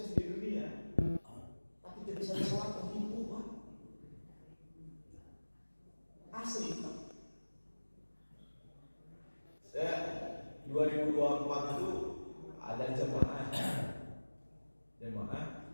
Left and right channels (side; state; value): both; inverted; correlation -1.00